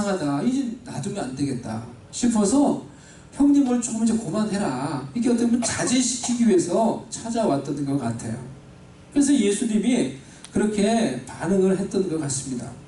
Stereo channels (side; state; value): both; identical; correlation 1.00